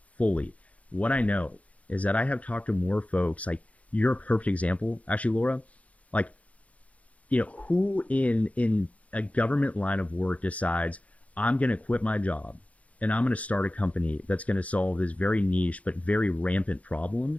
fully. What I know is that I have talked to more folks, like, you're a perfect example, actually, Laura, like, who in a government line of work decides I'm going to quit my job and I'm going to start a company that's going to solve this very niche but very rampant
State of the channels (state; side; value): late; right; 0.067 ms